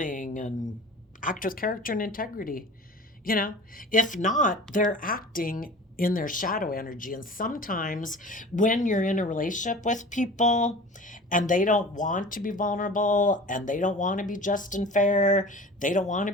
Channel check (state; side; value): normal; both; correlation 0.39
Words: and act with character and integrity? If not, they're acting in their shadow energy. And sometimes when you're in a relationship with people and they don't want to be vulnerable, and they don't want to be just and fair, they don't want to